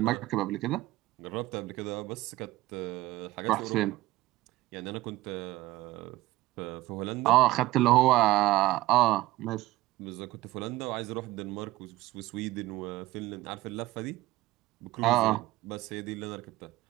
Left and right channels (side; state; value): left; quieter; 17.6 dB